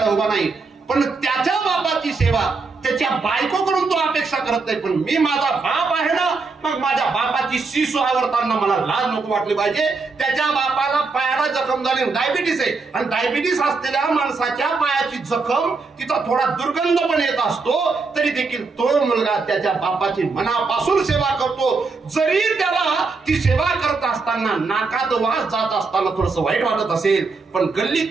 उभा नाही. पण त्याच्या बापाची सेवा त्याच्या बायकोकडून तो अपेक्षा करत नाही. पण मी माझा बाप आहे ना, मग माझ्या बापाची शिसू आवरताना मला लाज नको वाटली पाहिजे. त्याच्या बापाला पायाला जखम झाली, डायबिटीस आहे, आणि डायबिटीस असलेल्या माणसाच्या पायाची जखम तिचा थोडा दुर्गंध पण येत असतो, तरी देखील तो मुलगा त्याच्या बापाची मनापासून सेवा करतो. जरी त्याला ती सेवा करत असताना नाकात वास जात असताना थोडस वाईट वाटत असेल, पण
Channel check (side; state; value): left; quieter; 4.2 dB